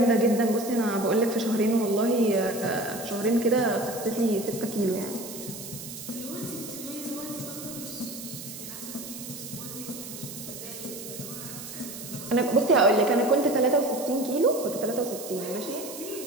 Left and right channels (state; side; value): noise; right; hiss, 11 dB below the sound